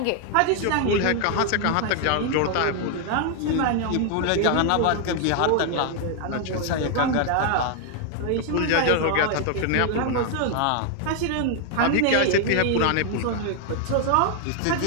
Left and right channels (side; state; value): both; different; correlation 0.00